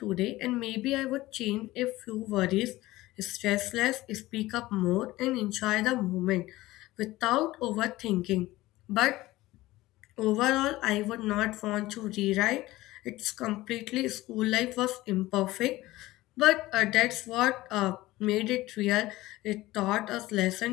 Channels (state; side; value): quieter; right; 17.9 dB